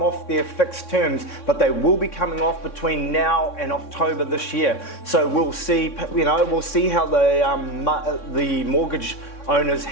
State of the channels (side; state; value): right; late; 3.6 ms